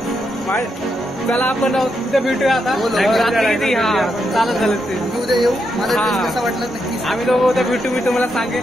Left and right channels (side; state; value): both; normal; correlation 0.82